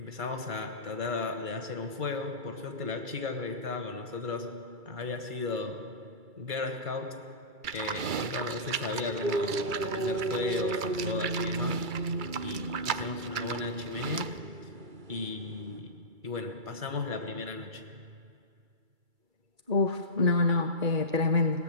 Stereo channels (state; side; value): late; left; 2.3 ms